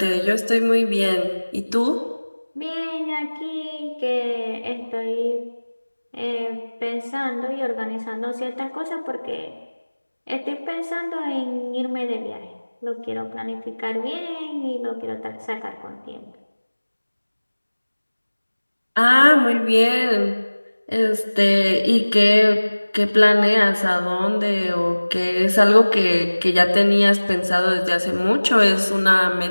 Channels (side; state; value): both; inverted; correlation -1.00